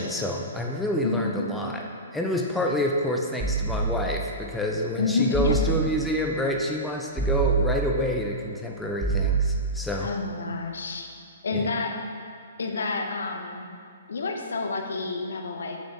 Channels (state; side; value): normal; both; correlation -0.15